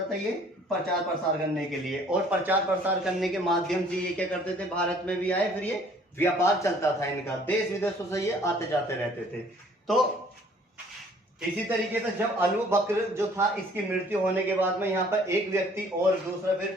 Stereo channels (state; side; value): normal; both; correlation 0.57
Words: था, ये प्रचार प्रसार करने के लिए। और प्रचार प्रसार करने के माध्यम से ये क्या करते थे, भारत में भी आए, फिर ये व्यापार चलता था इनका, देश विदेशों से ये आते जाते रहते थे। तो इसी तरीके से जब अबू बकर जो था इसकी मृत्यु होने के बाद में यहाँ पर एक व्यक्ति और दूसरा